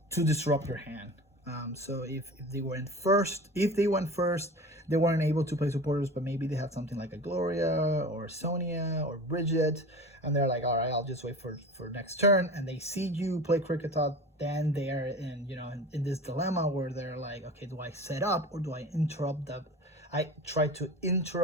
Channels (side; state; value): both; normal; correlation 0.34